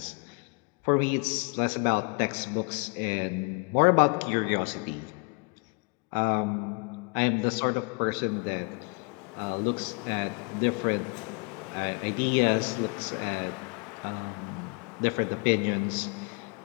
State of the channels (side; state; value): right; quieter; 33.7 dB